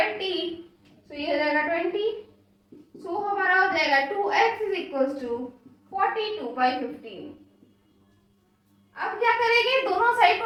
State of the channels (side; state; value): both; identical; correlation 1.00